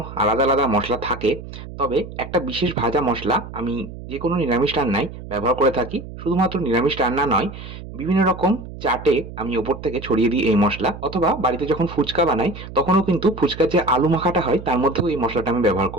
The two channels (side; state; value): right; noise; hum, 12 dB below the sound